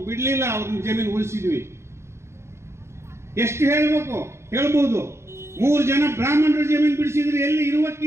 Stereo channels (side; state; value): left; late; 0.13 ms